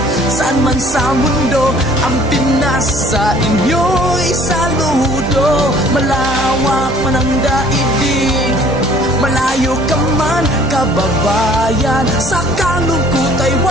saan man sa mundo, ang Pinas sa inyo'y saludo. Malawak man ang daigdig, malayo ka man kababayan, sa kalungkot ay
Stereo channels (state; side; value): normal; both; correlation 0.54